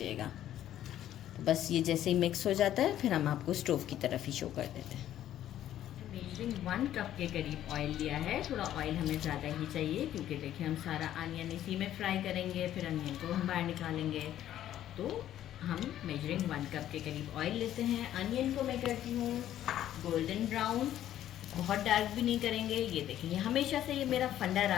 तो बस ये जैसे ही मिक्स हो जाता है फिर हम आपको स्टोव की तरफ ही शो कर देते हैं। मेजरिंग 1 कप के करीब ऑयल लिया है। थोड़ा ऑयल हमें ज़्यादा ही चाहिए क्योंकि देखिए हम सारा अनियन इसी में फ्राई करेंगे, फिर अनियन को हम बाहर निकालेंगे। तो हम मेजरिंग 1 कप के करीब ऑयल लेते हैं। अनियन को मैं करती हूँ गोल्डन ब्राउन, बहुत डार्क भी नहीं करेंगे। ये देखिए हमेशा से ये मेरा फंडा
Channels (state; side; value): quieter; right; 12.0 dB